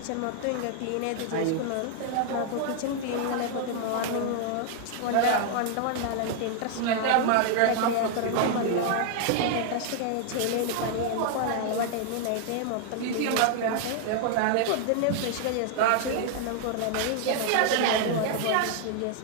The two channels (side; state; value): both; different; correlation 0.00